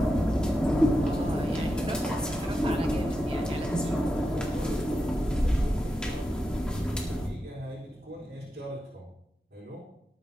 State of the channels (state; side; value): normal; both; correlation 0.89